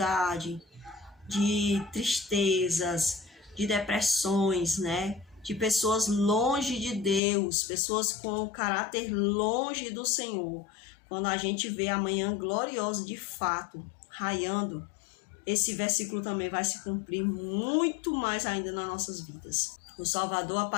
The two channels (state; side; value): drops out; right; at 7.2 s